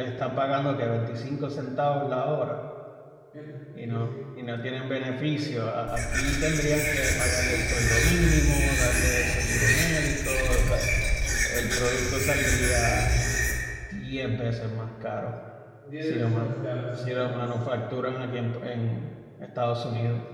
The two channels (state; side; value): identical; both; correlation 1.00